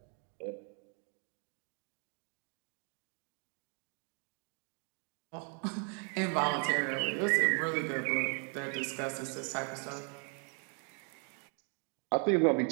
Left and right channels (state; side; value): quieter; left; 39.9 dB